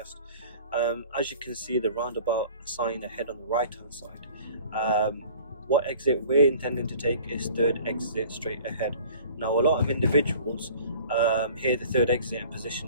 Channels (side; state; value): both; inverted; correlation -0.47